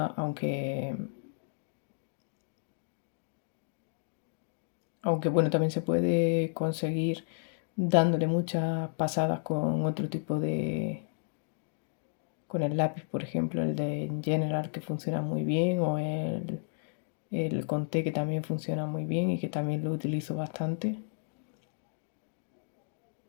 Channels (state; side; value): silent; right; digital silence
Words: aunque bueno, también se puede conseguir dándole muchas pasadas con otro tipo de, con el lápiz, por ejemplo, el de General que funciona muy bien o el Conté que también funciona muy bien y que también lo utilizo bastante.